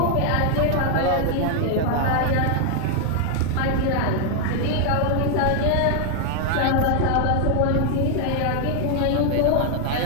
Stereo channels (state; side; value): different; both; correlation 0.00